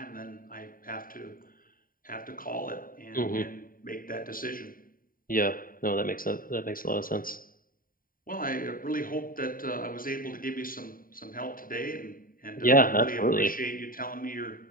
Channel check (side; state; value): right; late; 0.41 ms